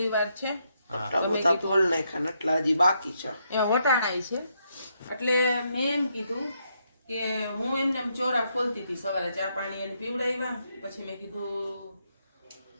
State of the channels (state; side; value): inverted; both; correlation -0.78